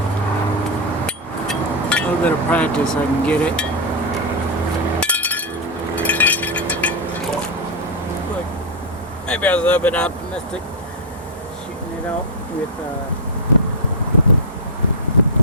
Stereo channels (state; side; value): normal; both; correlation -0.01